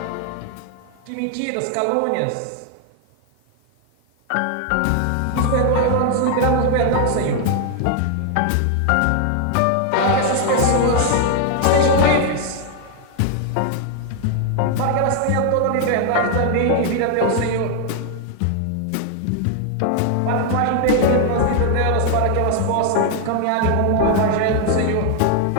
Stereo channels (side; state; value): both; different; correlation 0.00